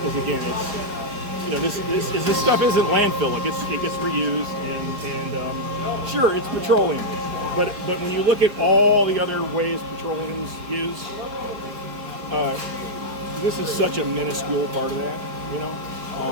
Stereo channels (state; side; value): late; left; 4.8 ms